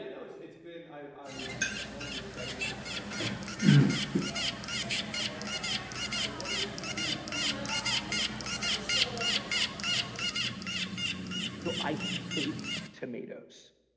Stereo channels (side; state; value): both; identical; correlation 1.00